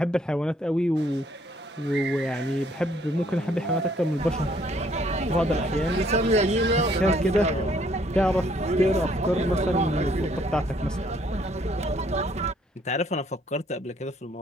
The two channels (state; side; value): normal; both; correlation 0.65